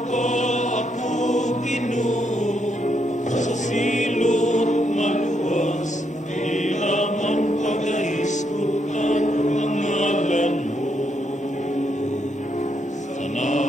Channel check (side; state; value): both; normal; correlation 0.77